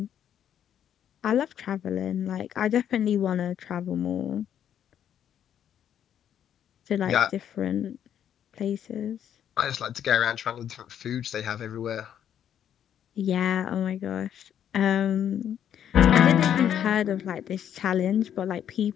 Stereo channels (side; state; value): right; quieter; 9.6 dB